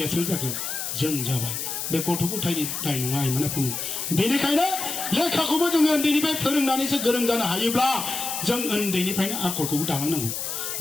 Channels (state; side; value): noise; left; hiss, 4 dB below the sound